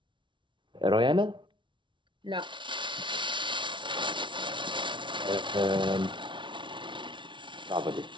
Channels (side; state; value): left; late; 0.24 ms